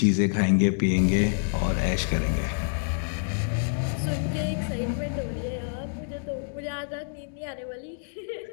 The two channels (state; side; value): silent; right; digital silence